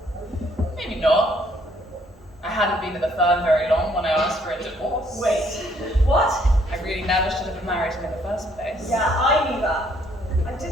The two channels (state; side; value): normal; both; correlation 0.66